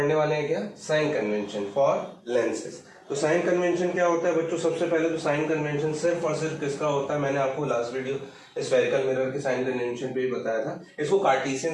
वाले हैं क्या? Sign convention for lenses. तो साइन कन्वेंशन क्या होता है बच्चों? सबसे पहले तो साइन कन्वेंशन सिर्फ और सिर्फ किसका होता है? मैंने आपको लास्ट वीडियो स्फेरिकल मिरर के साइन कन्वेंशन पे ही बताया था। इसको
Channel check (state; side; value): identical; both; correlation 1.00